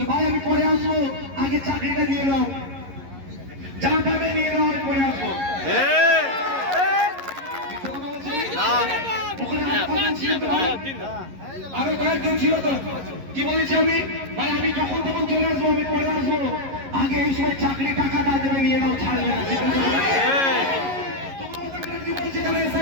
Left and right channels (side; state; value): left; late; 11 ms